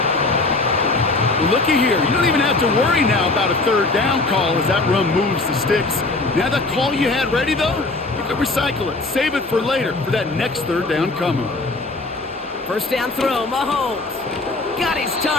Well, looky here. You don't even have to worry now about a third down call as that run moves the sticks. Now that call you had ready, though, you can recycle it. Save it for later for that next third down coming. First down throw, Mahomes. Got his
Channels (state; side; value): quieter; right; 3.2 dB